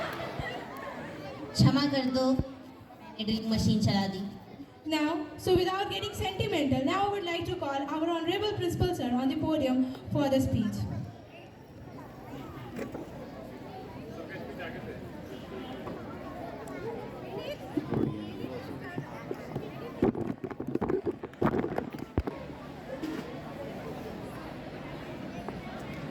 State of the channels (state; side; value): identical; both; correlation 1.00